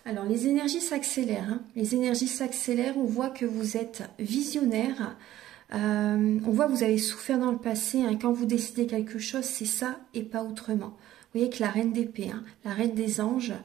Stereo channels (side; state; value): left; quieter; 13.8 dB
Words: Alors, les énergies s'accélèrent. Les énergies s'accélèrent. On voit que vous êtes visionnaire. On voit que vous avez souffert dans le passé. Hein, quand vous décidez quelque chose, c'est ça et pas autrement. Vous voyez que la reine d'épée, hein, la reine des anges,